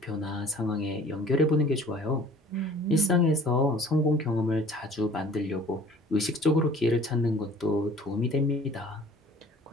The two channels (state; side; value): normal; both; correlation 0.50